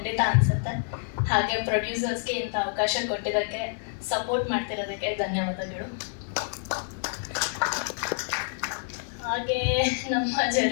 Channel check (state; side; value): silent; right; digital silence